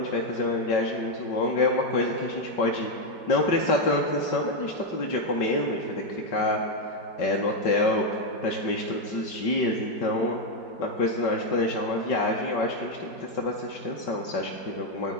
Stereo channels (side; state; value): right; late; 5.3 ms